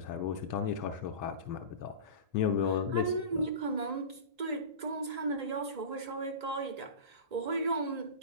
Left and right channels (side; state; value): left; late; 1.9 ms